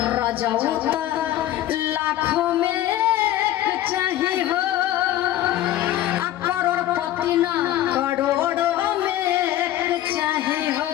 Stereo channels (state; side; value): quieter; right; 13.4 dB